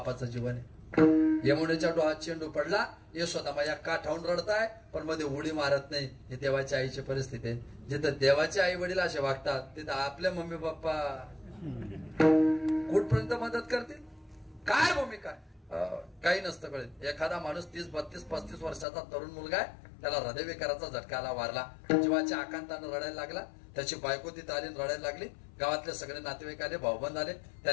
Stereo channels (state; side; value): drops out; right; at 18.9 s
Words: जीवन आहे. यमुनेच्या डोहात चेंडू पडला, यशोदामाया काठावून रडताय पण मध्ये उडी मारत नाही. हे देवाच्या आईची परिस्थिती आहे. जिथं देवाचे आई वडील असे वागतात तिथं आपले मम्मी पप्पा कुठपर्यंत मदत करतील. काय भूमिका, काही नसतं कळत. एखादा माणूस 30, 32, 35 वर्षाचा तरुण मुलगा आहे, त्याला हृदयविकाराचा झटका आला, वारला. जीवाच्या आकांतानं रडायला लागला. त्याची बायको तिथं आली, रडायला लागली. गावातले सगळे नातेवाईक आले, भाऊबंद आले.